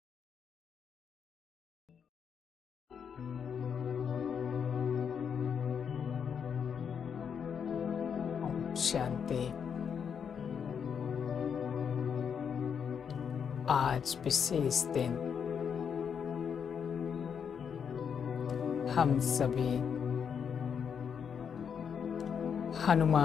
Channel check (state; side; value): quieter; right; 7.2 dB